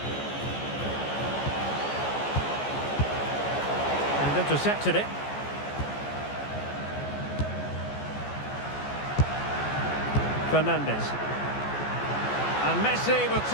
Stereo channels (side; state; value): right; late; 14 ms